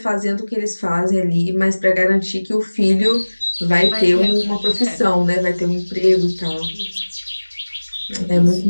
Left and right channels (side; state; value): both; inverted; correlation -1.00